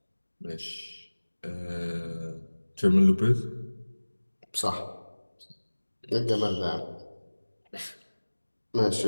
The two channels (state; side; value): inverted; both; correlation -1.00